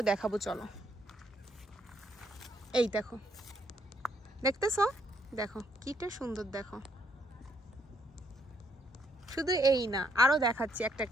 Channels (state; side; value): normal; both; correlation 0.72